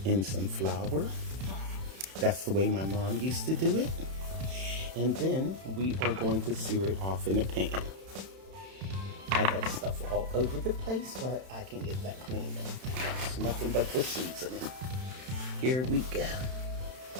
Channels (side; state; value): left; late; 31 ms